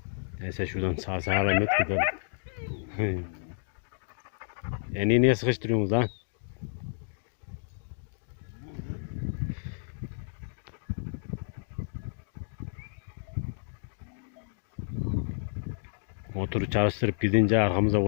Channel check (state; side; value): silent; right; digital silence